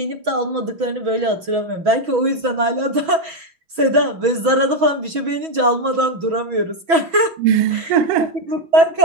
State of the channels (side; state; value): left; late; 6.1 ms